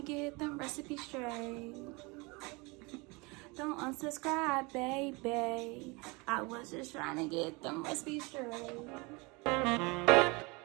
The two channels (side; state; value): left; quieter; 27.1 dB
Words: get them recipes straight. Don't unsubscribe, baby. I was just trying to get them recipes straight.